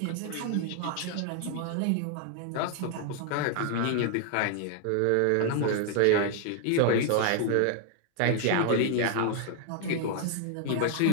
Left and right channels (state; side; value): different; both; correlation 0.00